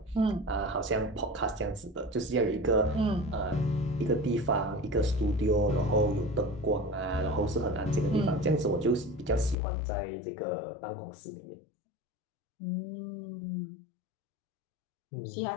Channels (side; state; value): right; drops out; at 9.6 s